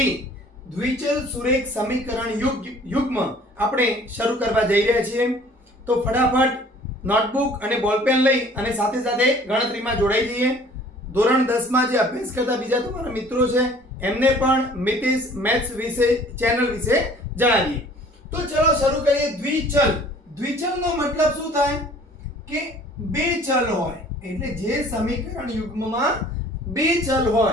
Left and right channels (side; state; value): both; normal; correlation 0.52